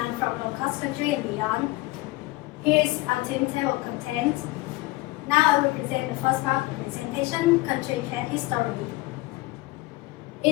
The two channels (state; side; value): quieter; right; 20.7 dB